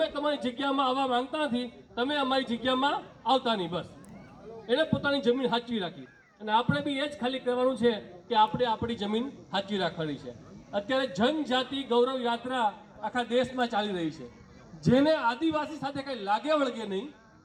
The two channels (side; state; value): both; identical; correlation 1.00